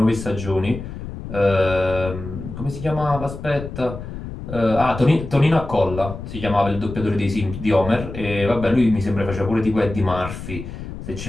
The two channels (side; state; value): left; noise; rumble, 9 dB below the sound